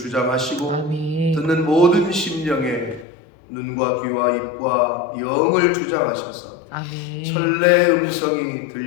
아멘. 듣는 모든 심령에 눈과 귀와 입과 영을 주장하셔서 아멘. 천래의 음성이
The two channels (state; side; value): drops out; right; at 3.1 s